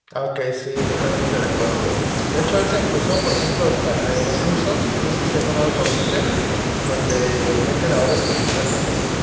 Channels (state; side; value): identical; both; correlation 1.00